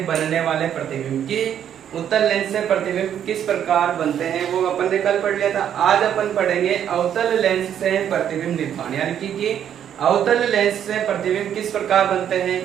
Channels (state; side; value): quieter; left; 9.6 dB